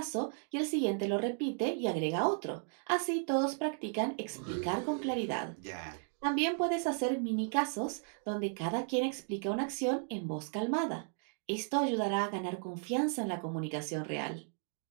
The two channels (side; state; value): left; silent; 54 dB below the other